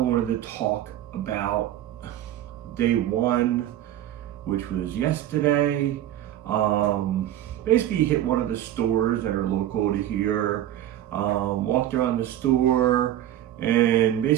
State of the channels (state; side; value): quieter; left; 12.4 dB